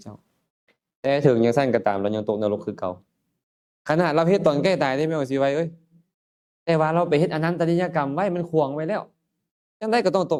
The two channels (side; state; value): both; identical; correlation 1.00